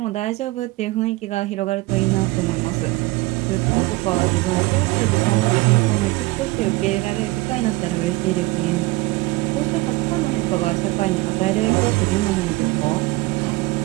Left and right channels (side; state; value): left; quieter; 21.6 dB